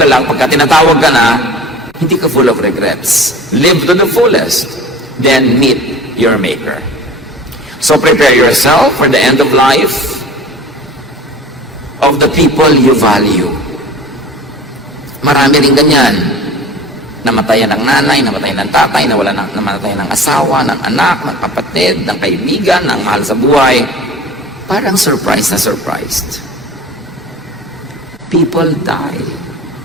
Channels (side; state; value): both; normal; correlation 0.41